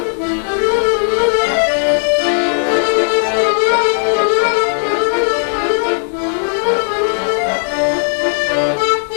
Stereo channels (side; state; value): right; silent; digital silence